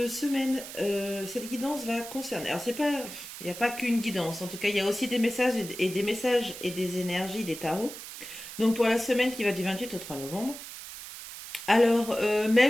guidance va concerner. Alors c'est pas, il n'y a pas qu'une guidance. En tout cas, il y a aussi des messages et des messages et des énergies des tarots. Donc pour la semaine qui va du 28 au 3 novembre. Alors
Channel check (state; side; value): noise; right; hiss, 12 dB below the sound